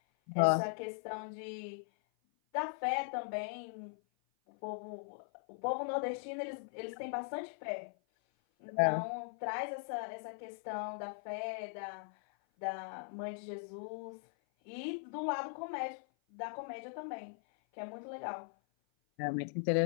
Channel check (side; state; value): right; silent; 52 dB below the other